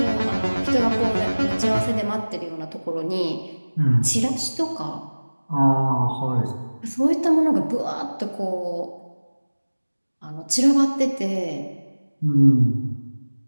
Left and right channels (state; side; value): inverted; both; correlation -1.00